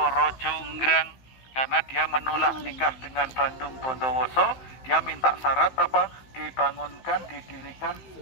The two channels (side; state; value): right; late; 15 ms